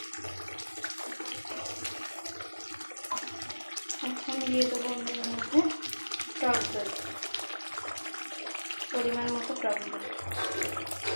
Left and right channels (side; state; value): both; inverted; correlation -1.00